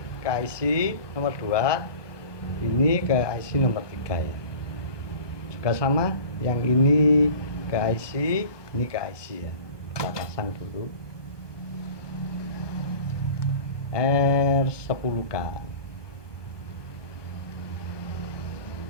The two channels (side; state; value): right; late; 1.2 ms